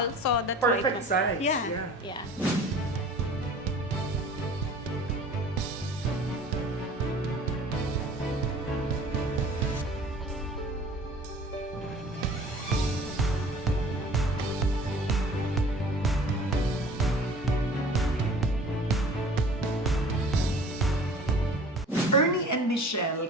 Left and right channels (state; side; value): normal; both; correlation 0.46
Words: so that's Perfect why size, yeah. Yeah. Ernie and Michelle,